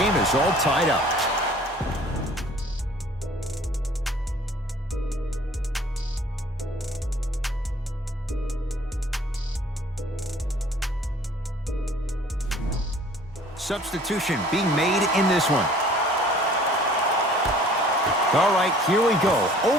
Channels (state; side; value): normal; both; correlation 0.52